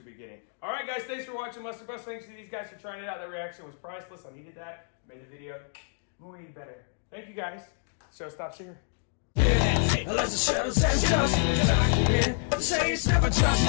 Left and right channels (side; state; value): right; silent; 59 dB below the other